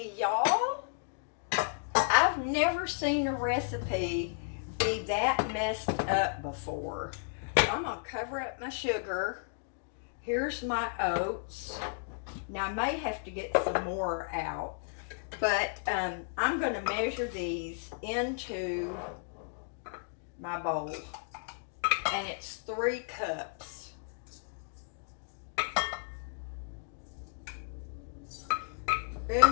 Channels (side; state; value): right; silent; digital silence